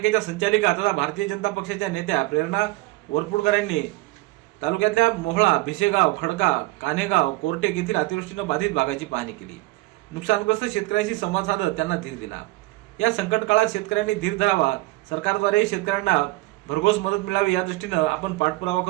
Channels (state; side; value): quieter; left; 20.3 dB